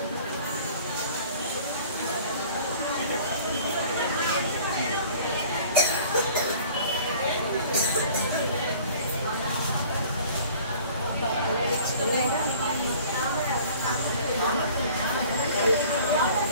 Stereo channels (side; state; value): both; inverted; correlation -0.49